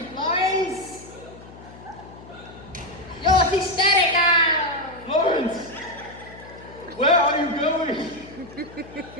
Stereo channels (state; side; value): noise; left; hum, 19 dB below the sound